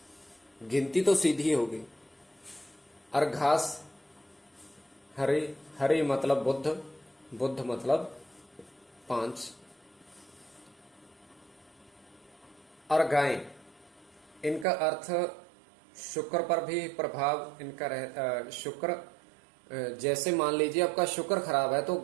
गिनती तो सीधी होगी, और घास हरी, हरी मतलब बुद्ध, बुद्ध मतलब 5, और गाय, इनका अर्थ शुक्र पर भी प्रभाव इनका शुक्र, जैसे मान लीजिए आपका शुक्र खराब है तो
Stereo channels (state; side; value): drops out; left; at 14.7 s